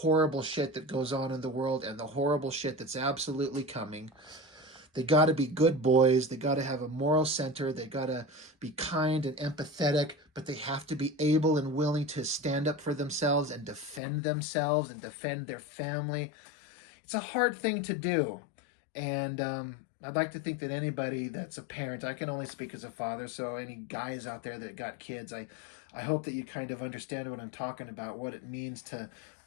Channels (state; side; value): drops out; right; at 14.0 s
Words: shit that goes on in the world and the horrible shit that's absolutely coming. They got to be good boys. They got to have a moral center. They got to be kind and empathetic, but they have to be able and willing to stand up for themselves and defend their family. It's a hard thing to do. And I'd like to think that anybody that's a parent, I can only speak as a father, so any guys out there that got kids, I hope that you kind of understand what I'm talking about, what it means to